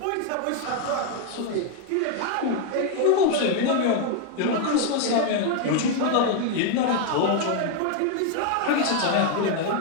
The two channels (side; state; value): both; different; correlation 0.01